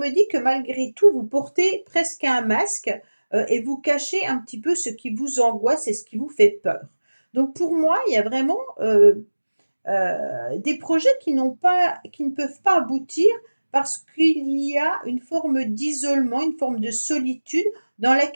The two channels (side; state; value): both; inverted; correlation -1.00